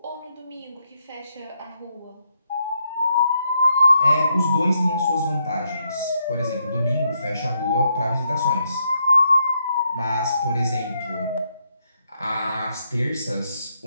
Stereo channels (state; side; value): inverted; both; correlation -0.78